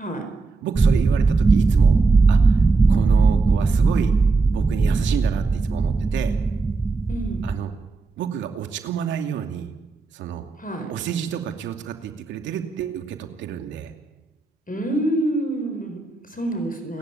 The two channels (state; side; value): quieter; left; 4.0 dB